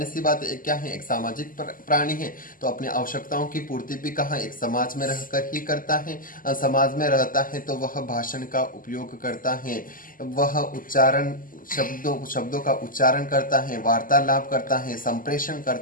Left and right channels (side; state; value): right; late; 0.41 ms